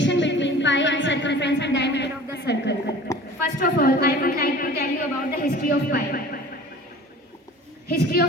between pi and circumference and diameter of the circle. First of all, I would like to tell you about the history of pi. History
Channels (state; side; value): normal; both; correlation 0.43